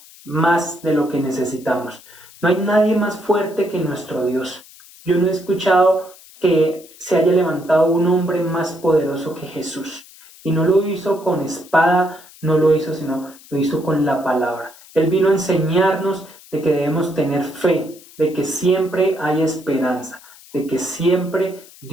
más de lo que necesitamos. No hay nadie más fuerte que nuestro Dios. Yo no he escuchado que se haya levantado un hombre más poderoso que Jesús. Y no lo hizo con espada, no lo hizo, sino lo hizo con la palabra. Él vino a enseñarnos de que debemos tener fe, de que siempre hay esperanza, de que siempre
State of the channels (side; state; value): left; noise; hiss, 22 dB below the sound